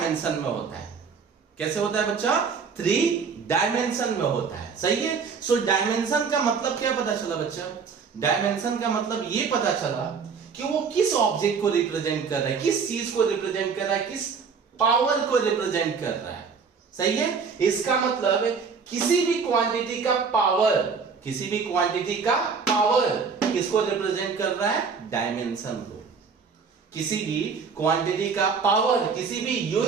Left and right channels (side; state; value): left; quieter; 5.6 dB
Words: में होता है। कैसे होता है बच्चा? 3 डायमेंशन में होता है। सही है। सो डायमेंशन का मतलब क्या पता चला बच्चा? डायमेंशन का मतलब ये पता चला कि वो किस ऑब्जेक्ट को रिप्रेजेंट कर रहा है, किस चीज को रिप्रेजेंट कर रहा है, किस पावर को रिप्रेजेंट कर रहा है। सही है। इसका मतलब किसी भी क्वांटिटी का पावर किसको रिप्रेजेंट कर रहा है? डायमेंशन को। किसी भी क्वांटिटी का पावर, किसी भी